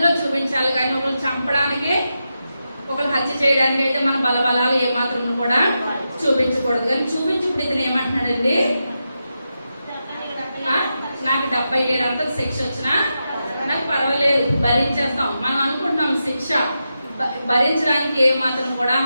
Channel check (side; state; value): both; inverted; correlation -0.88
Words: చూపించాలి. కానీ ఒకరు చంపడానికి, ఒకరు హత్య చేయడానికి అయితే మన బలబలాలు ఏమాత్రం కూడా చూపించకూడదు. కానీ చూపించుకుడు ఇతను ఏమంటున్నాడండి, నాకు 77 శిక్ష వచ్చినా నాకు పర్వాలేదు, భరించేస్తాం. మనం అనుకుంటున్నాం శిక్ష భరించడానికి ఏమాత్రం కూడా